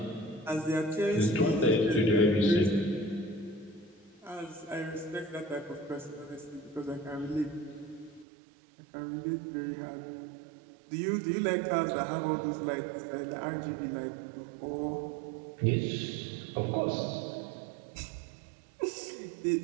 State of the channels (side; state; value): left; drops out; at 8.2 s